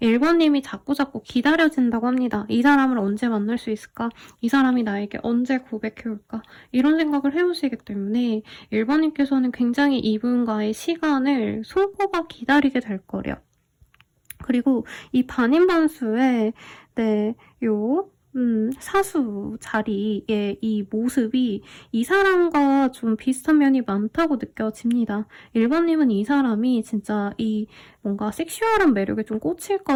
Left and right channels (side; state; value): both; identical; correlation 1.00